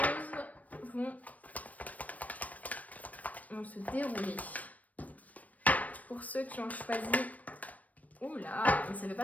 vont se dérouler. Pour ceux qui ont choisi... Oula, mais ça ne veut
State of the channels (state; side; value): late; right; 0.071 ms